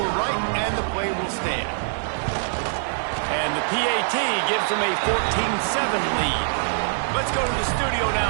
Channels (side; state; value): left; silent; digital silence